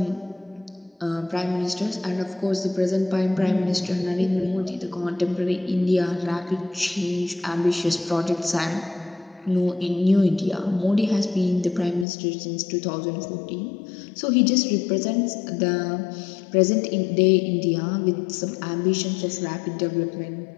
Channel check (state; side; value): drops out; right; at 12.1 s